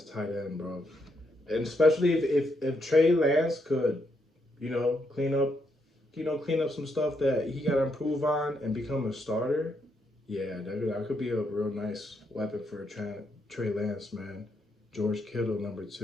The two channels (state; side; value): normal; both; correlation 0.78